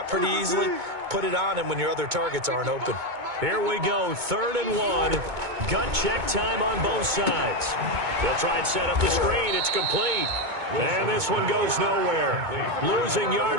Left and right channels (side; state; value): left; late; 2.2 ms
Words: pretty easily. Put it on him when your other targets aren't open. Here we go, 3rd and 1. Gut check time on both sides. They'll try and set up the screen. It's complete. And this one goes nowhere. Losing